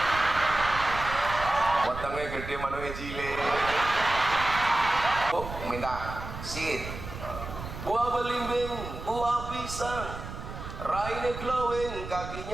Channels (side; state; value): right; noise; rumble, 9 dB below the sound